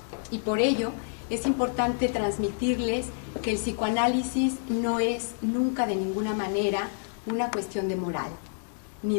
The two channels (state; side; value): silent; right; 59 dB below the other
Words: y por ello es importante transmitirles que el psicoanálisis no es nunca de ninguna manera una cuestión de moral